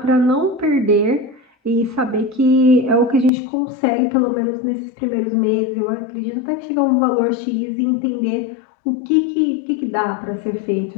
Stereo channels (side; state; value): right; drops out; at 3.3 s